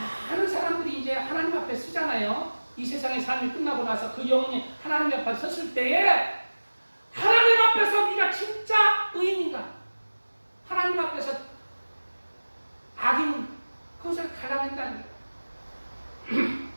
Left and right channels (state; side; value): inverted; both; correlation -1.00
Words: 사람들이 이제 하나님 앞에 쓰잖아요. 이 세상의 삶이 끝나고 나서 그 영혼이 하나님 앞에 섰을 때에 하나님 앞에서 네가 진짜 의인인가? 하나님 앞에서 악인 그것을 갈라낸다는 거예요.